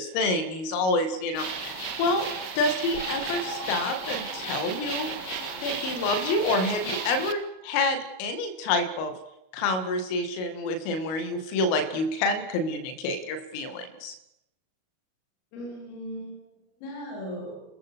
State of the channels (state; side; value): late; right; 38 ms